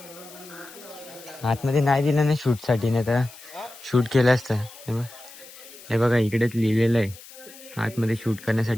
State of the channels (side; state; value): left; noise; hiss, 19 dB below the sound